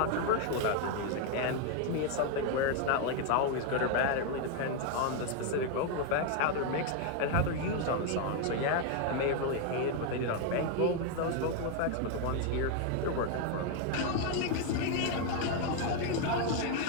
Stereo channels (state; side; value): different; both; correlation 0.01